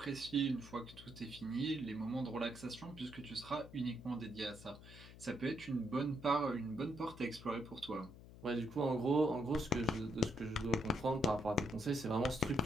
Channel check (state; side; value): noise; left; hum, 17 dB below the sound